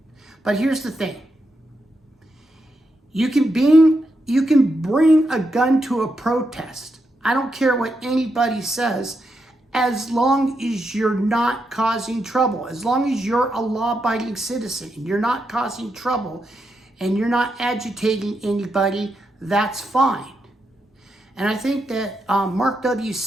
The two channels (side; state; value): both; normal; correlation 0.83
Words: But here's the thing. You can bring a gun to a protest. I don't care what anybody says, as long as you're not causing trouble. As long as you're a law-abiding citizen and you're not causing trouble and you're not agitating anybody, that's fine. And I think that Mark W.